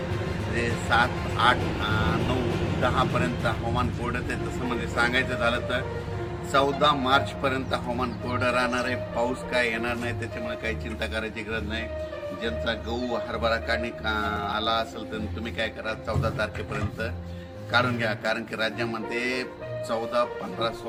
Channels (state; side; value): identical; both; correlation 1.00